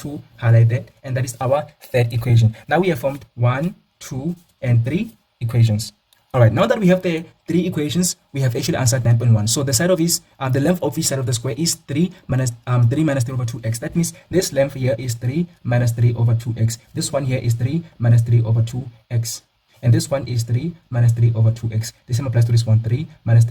highlight that, and that is our third equation. Now we have formed 1, 2, and 3 equations. All right, now that we have the 3 equations, we have actually answered 9.1. So the side of each, the length of each side of the square is 3 minus 3 over 2x. That means this length here is 3 minus 3 over 2x. This one here is 3 minus 3 over 2x. And this one is 3 minus 3 over 2x. The same applies to this one, 3 minus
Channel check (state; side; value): identical; both; correlation 1.00